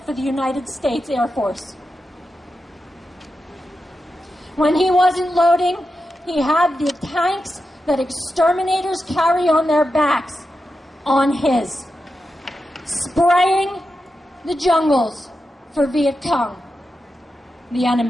for the United States Air Force. When he wasn't loading, he had the tanks that exterminators carry on their backs on his, spraying the jungles for Viet Cong, the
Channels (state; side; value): normal; both; correlation 0.89